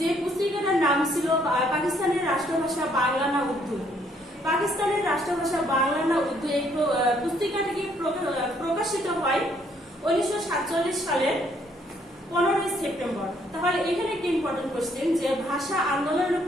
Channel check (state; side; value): normal; both; correlation 0.67